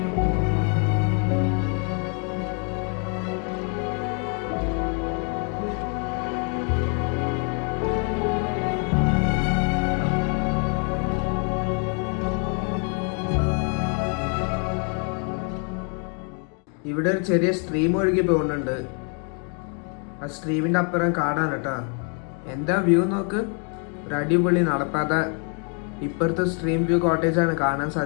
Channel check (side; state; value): right; quieter; 39.9 dB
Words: ഇവിടെ ഒരു ചെറിയ സ്ട്രീം ഒഴുകി പോകുന്നുണ്ട്. ആ സ്ട്രീമിൻ്റെ അപ്പുറം കാടാണ് കേട്ടോ. എന്താ വ്യൂ നോക്ക്, ഒരു അടിപൊളി നടപ്പാത. ഇപ്പുറത്തെ സ്ട്രീം വ്യൂ കോട്ടേജാണ് കാണാൻ